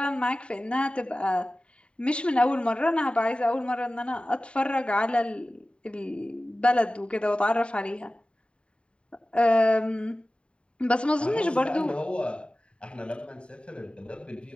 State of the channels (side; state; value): right; late; 0.055 ms